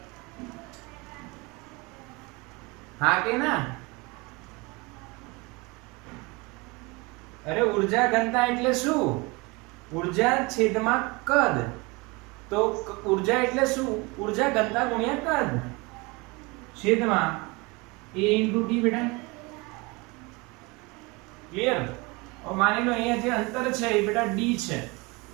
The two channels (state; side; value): quieter; left; 26.0 dB